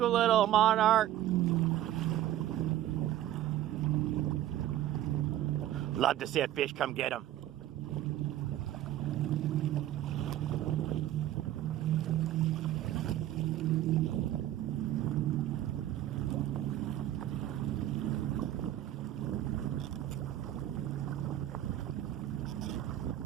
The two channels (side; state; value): left; quieter; 12.9 dB